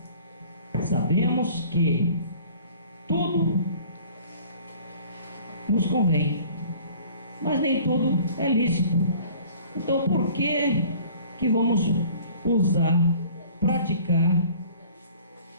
sabemos que tudo nos convém, mas nem tudo é lícito. Então, por que vamos usar, praticar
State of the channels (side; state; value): both; inverted; correlation -0.49